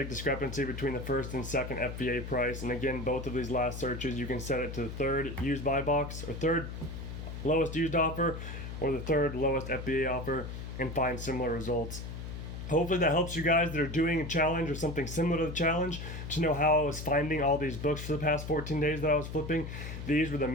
discrepancy between the first and second FBA price. And again, both of these last searches, you can set it to the third used buy box, or third lowest used offer, or the third lowest FBA offer, and find similar results. Hopefully that helps you guys that are doing a challenge or something similar to the challenge to know how I was finding all these books for the past 14 days that I was flipping. These were the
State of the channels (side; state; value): left; noise; hum, 8 dB below the sound